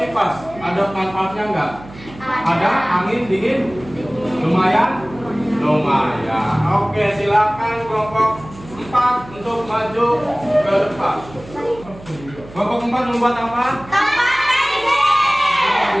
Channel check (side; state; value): right; noise; hum, 18 dB below the sound